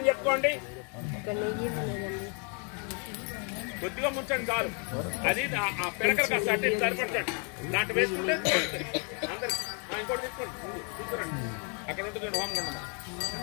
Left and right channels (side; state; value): right; quieter; 38.6 dB